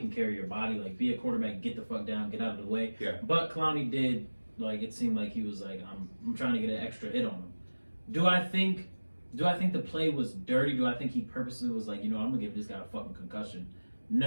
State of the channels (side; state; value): both; inverted; correlation -1.00